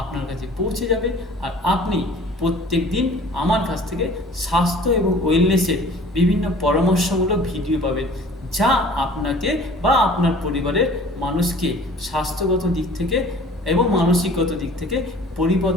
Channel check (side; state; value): both; normal; correlation 0.48